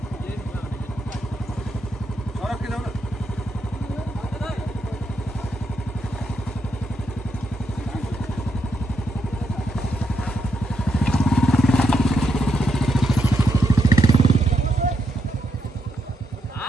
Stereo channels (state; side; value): normal; both; correlation 0.80